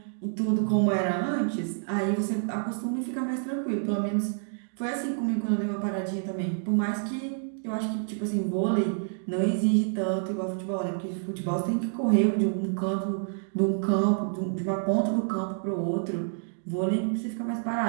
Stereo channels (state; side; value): silent; left; digital silence